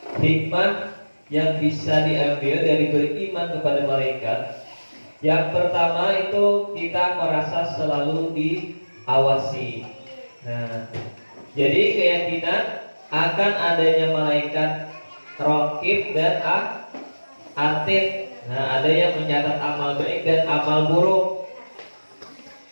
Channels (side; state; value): both; inverted; correlation -1.00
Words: hikmah yang bisa diambil dari beriman kepada malaikat. Yang pertama itu kita merasa selalu diawasi. Nah, jadi keyakinan akan adanya malaikat raqib dan atid. Nah, ada yang mencatat amal baik dan amal buruk.